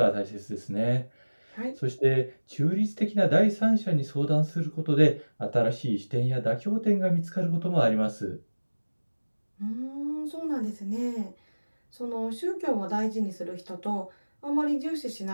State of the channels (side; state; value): both; inverted; correlation -1.00